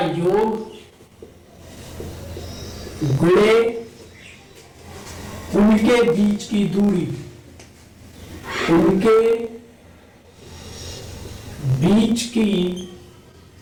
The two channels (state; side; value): identical; both; correlation 1.00